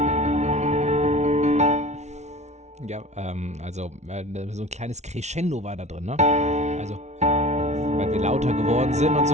Ja, so ein kleines Crescendo war da drin, ne? Also, weil wir lauter geworden sind und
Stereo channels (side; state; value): left; late; 0.32 ms